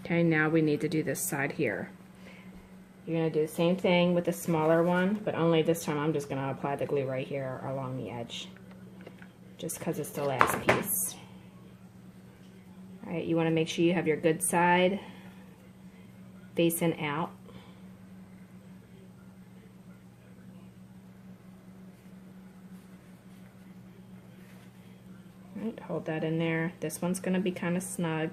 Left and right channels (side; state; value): both; identical; correlation 1.00